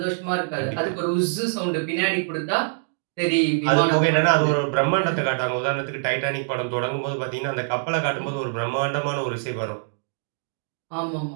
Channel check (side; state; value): left; silent; digital silence